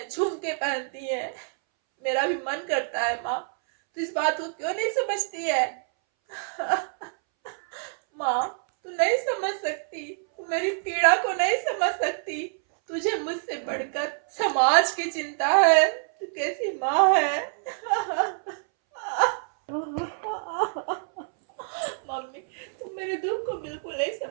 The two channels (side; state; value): left; silent; 61 dB below the other